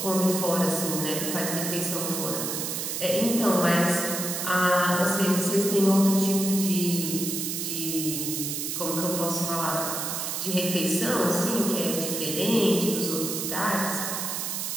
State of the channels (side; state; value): right; noise; hiss, 3 dB below the sound